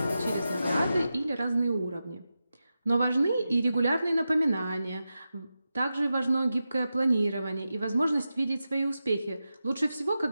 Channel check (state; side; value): inverted; both; correlation -0.91